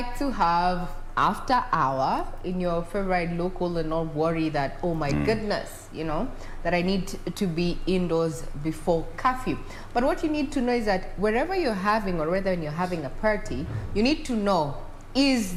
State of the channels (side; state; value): both; identical; correlation 1.00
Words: to have after hour in your favorite local and not worry that, oh my goodness, you know, that I need to be indoors before curfew. But what you need to know is that wherever you're having, or whether you're having a party, you need to know,